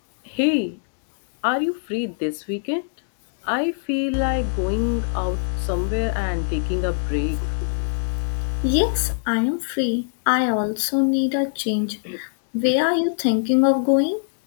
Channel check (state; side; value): silent; right; digital silence